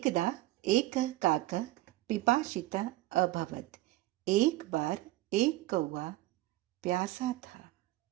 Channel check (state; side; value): quieter; left; 17.5 dB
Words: एक काकः पिपासितः अभवत्। एक बार एक कौवा प्यासा था।